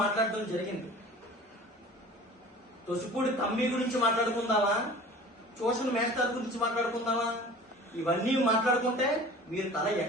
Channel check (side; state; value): both; normal; correlation 0.42